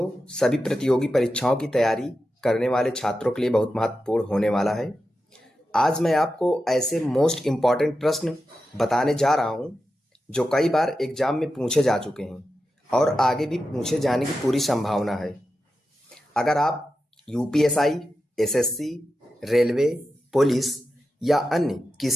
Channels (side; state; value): both; normal; correlation 0.90